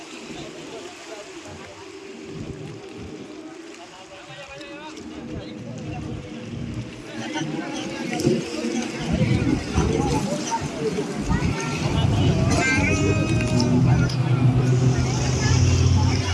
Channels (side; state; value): both; identical; correlation 1.00